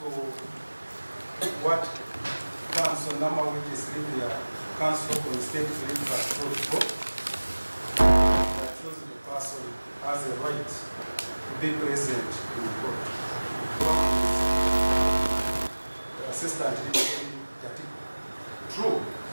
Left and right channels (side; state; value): both; inverted; correlation -1.00